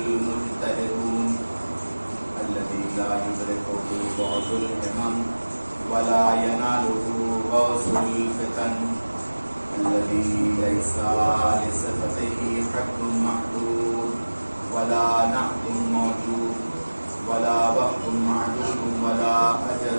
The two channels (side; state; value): both; inverted; correlation -1.00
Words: الذي لا يدركه بعض الهمم ولا يناله غوث الفتن. الذي ليس لصفته حد محدود ولا نعت موجود ولا وقت معدود ولا